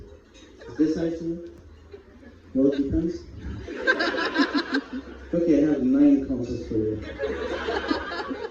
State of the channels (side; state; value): both; identical; correlation 1.00